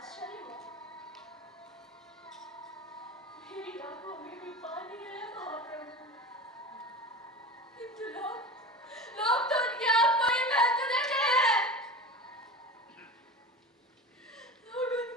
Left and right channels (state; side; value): normal; both; correlation 0.31